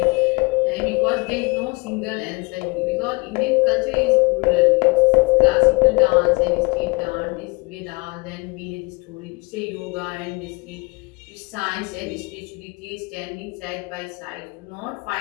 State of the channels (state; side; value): quieter; right; 27.9 dB